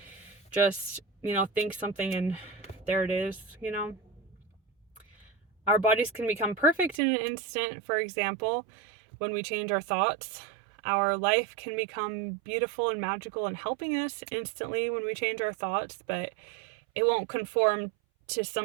just, think something and there it is. Our bodies can become perfect in an instant, for example, when we change our thoughts. Our life can become beautiful and magical and helping us instantly when we change our thoughts, but it won't conform to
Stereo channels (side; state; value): left; drops out; at 7.0 s